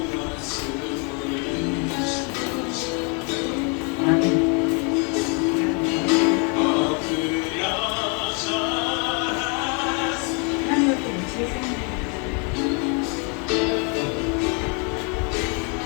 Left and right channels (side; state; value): right; quieter; 35.4 dB